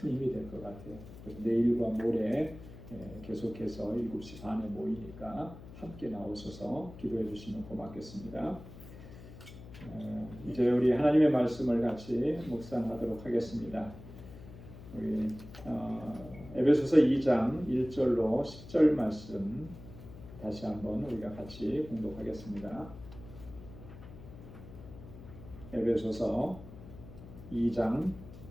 힘이 될 것 같아요. 내일과 모레 계속해서 7시 반에 모이니까 함께 나오셔서 기도해 주시면 고맙겠습니다. 이제 우리 하나님의 말씀을 같이 묵상하도록 하겠습니다. 우리 에베소서 2장 1절로 10절 말씀 다시 한번 우리가 같이 공독하겠습니다. 에베소서 2장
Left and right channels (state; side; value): noise; left; hum, 16 dB below the sound